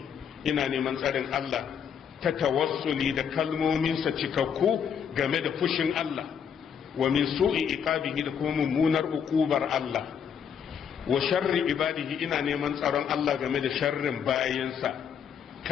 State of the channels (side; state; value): right; quieter; 7.6 dB